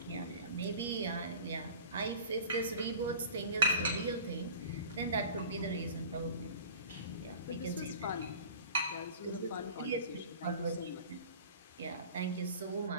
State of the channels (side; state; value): both; inverted; correlation -0.41